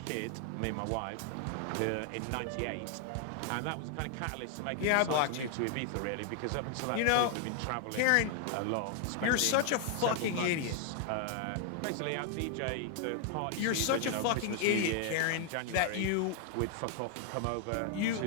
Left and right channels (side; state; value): both; different; correlation 0.00